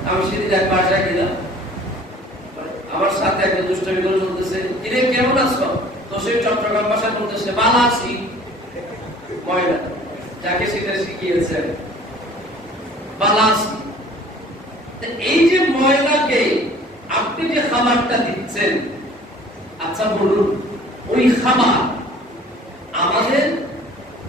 আমি সেদিন এক বাসায় গেলাম, আমার সাথে একটা দুষ্টামি করে বলতেছে, কিরে কেমন আছো? তো সে চট্টগ্রাম ভাষায় বলতেছে ভালো আছি। ময়না যাকে সেটা শিখিয়েছে ভালো আছি। এই যে ময়নাকে আপনি যে খাবারটা দিচ্ছেন, আচ্ছা বলুন ওই খাবার আমাদের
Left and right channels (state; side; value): normal; both; correlation 0.50